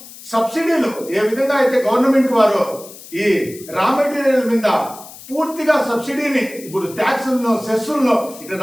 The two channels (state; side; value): noise; left; hiss, 17 dB below the sound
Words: సబ్సిడీలు ఏ విధంగా అయితే గవర్నమెంట్ వారు ఈ రా మెటీరియల్ మీద పూర్తిగా సబ్సిడీని ఇప్పుడు ట్యాక్సులను, సెస్సులను, ఇటు